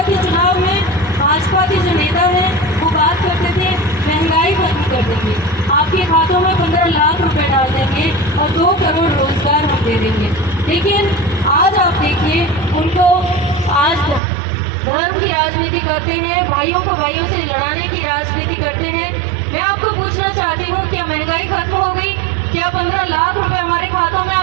के चुनाव में भाजपा के जो नेता हैं वो बात करते थे महंगाई खत्म कर देंगे, आपके खातों में 15 लाख रुपए डाल देंगे और 2 करोड़ रोजगार हम दे देंगे। लेकिन आज आप देखिए, उनको आज धर्म की राजनीति करते हैं, भाइयों को भाइयों से लड़ाने की राजनीति करते हैं। मैं आपको पूछना चाहती हूँ, क्या महंगाई खत्म हो गई? क्या 15 लाख रुपए हमारे खातों में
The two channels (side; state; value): left; drops out; at 14.2 s